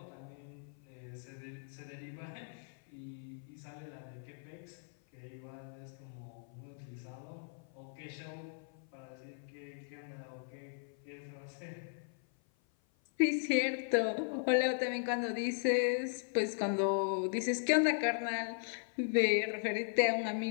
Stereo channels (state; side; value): silent; right; 53 dB below the other